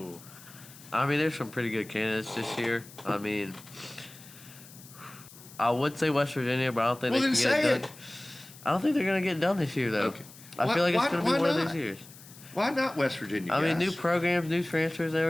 There's some pretty good candidates this year. I would say West Virginia, but I don't think Well, they then can get say it done. I don't think they're going to get it done this year, though. Okay. I feel like it's Why- going to why be one of not? those years. Why not West Virginia? New programs, new transfers, and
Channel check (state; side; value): noise; left; hiss, 20 dB below the sound